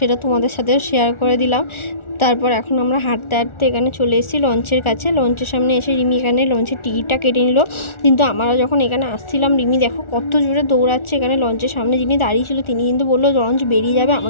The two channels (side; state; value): right; late; 1.4 ms